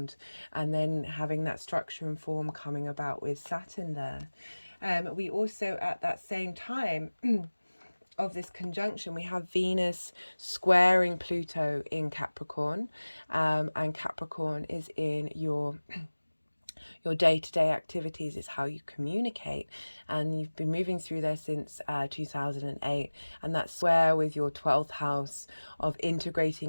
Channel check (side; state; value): both; inverted; correlation -1.00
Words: And then having that structure and form coming about with Saturn there. We also, at that same time of this conjunction, we have Venus squaring Pluto in Capricorn, and Capricorn is in your day-to-day activities. It's how you communicate, and you've been moving through there since 2008, and that square with your 12th house of